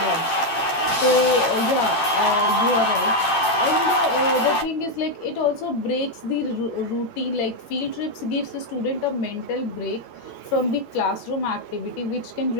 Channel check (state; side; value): late; right; 11 ms